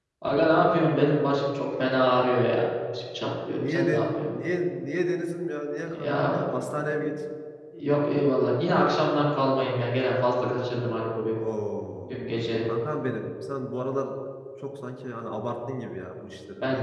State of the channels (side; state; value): both; identical; correlation 1.00